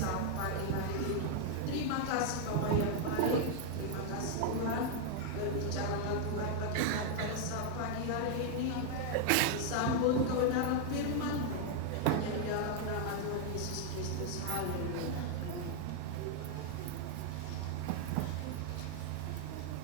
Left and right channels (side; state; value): both; different; correlation 0.00